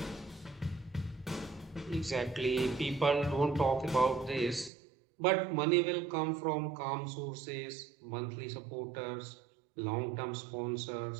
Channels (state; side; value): drops out; left; at 4.7 s